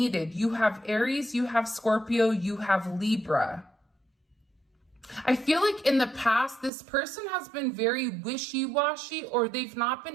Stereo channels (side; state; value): left; drops out; at 6.7 s